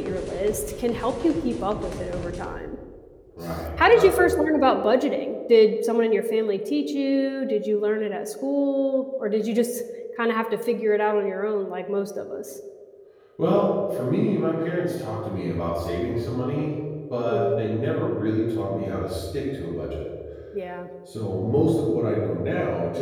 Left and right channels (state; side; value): identical; both; correlation 1.00